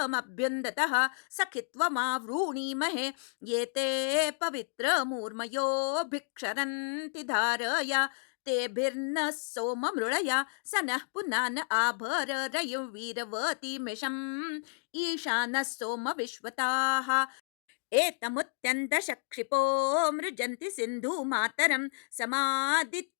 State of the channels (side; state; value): right; silent; digital silence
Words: सखित्वमावृणीमहे ये ते पवित्रमूर्मयो भिक्षरन्ति धारया तेभिर्नः सोममृळया स नः पुनान आभर रयुं वीरवतीमिषम् ईशानः सोम विश्वताः एतमुत्यन्तशक्षिपो मृजन्ति सिन्धुमातरं